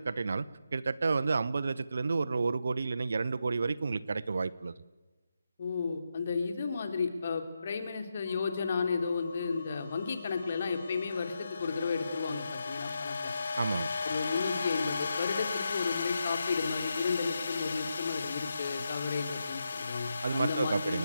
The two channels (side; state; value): both; inverted; correlation -0.86